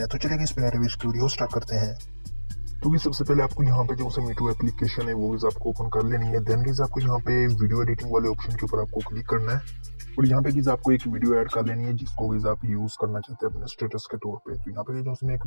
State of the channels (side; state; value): both; inverted; correlation -1.00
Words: है। तो चलिए इस वीडियो स्टार्ट करते हैं। तो सबसे पहले आपको यहाँ पे जो मीटू एप्लीकेशन है वो आपको ओपन कर लेनी है। देन आपको यहाँ पे वीडियो एडिटिंग वाले ऑप्शन के ऊपर आपको क्लिक करना है और यहाँ पे आपको एक वीडियो ऐड कर लेनी है जिसको आप यूज करना चाहते हैं अपने स्टेटस के तौर पे। तो यहाँ पे जो मैं एक